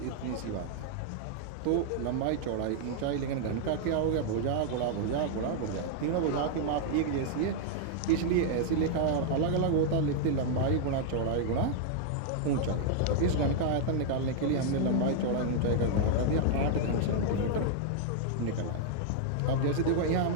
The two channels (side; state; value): both; different; correlation -0.01